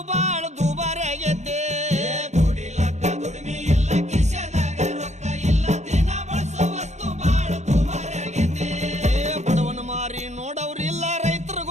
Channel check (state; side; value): late; left; 0.33 ms